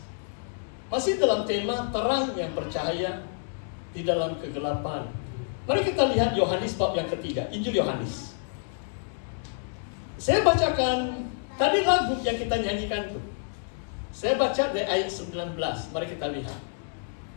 Masih dalam tema terang yang bercahaya di dalam kegelapan. Mari kita lihat Yohanes bab yang ketiga, Injil Yohanes. Saya bacakan tadi lagu yang kita nyanyikan itu. Saya baca dari ayat 19, mari kita lihat.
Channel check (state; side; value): silent; right; digital silence